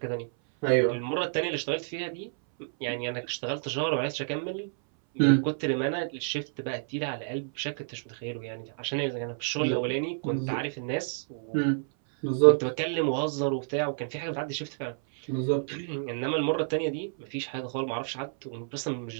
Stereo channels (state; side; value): silent; left; 58 dB below the other